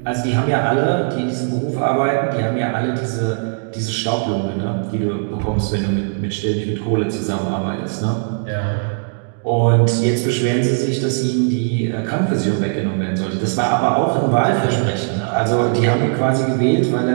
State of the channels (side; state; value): left; silent; digital silence